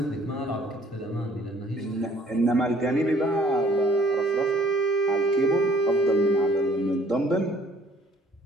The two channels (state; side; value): normal; both; correlation 0.58